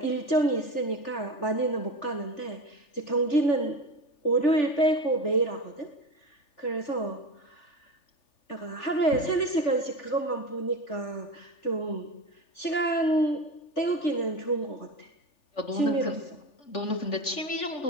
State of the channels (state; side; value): late; right; 3.4 ms